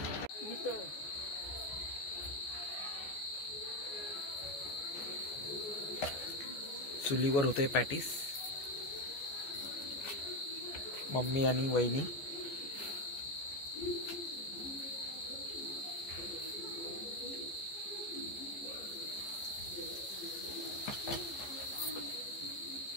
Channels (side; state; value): right; late; 14 ms